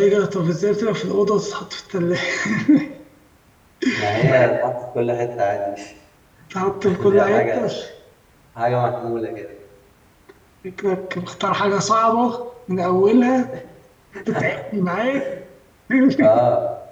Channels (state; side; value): identical; both; correlation 1.00